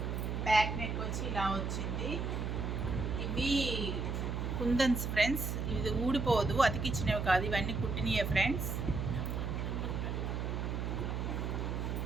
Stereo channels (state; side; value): noise; right; hum, 2 dB below the sound